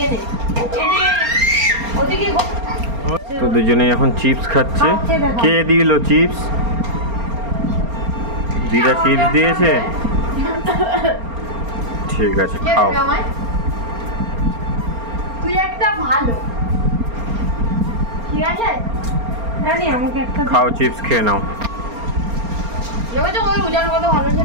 নে ওদিকে। তো দুজনেই এখন চিপস খাচ্ছে। কে দিল চিপস? দিদা চিপস দিয়েছে, ঠিক আছে খাও। তুই একটা ভালো, ঠিক আছে জানি আমাকে একটা খাও, চিপস খেয়ে নাও। দেখো ওই উজার কত ভালো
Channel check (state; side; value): late; left; 4.3 ms